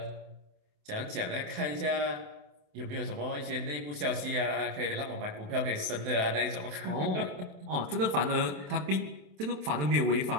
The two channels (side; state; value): left; late; 27 ms